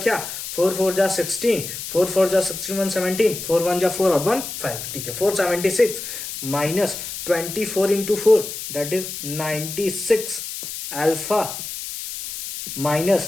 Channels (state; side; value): noise; left; hiss, 8 dB below the sound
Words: 4 4 जा 16, 4 4 जा 16 1 17, 4 1 जा 4 और 1 5। ठीक है, 476 minus 24 into 4 that is 96 alpha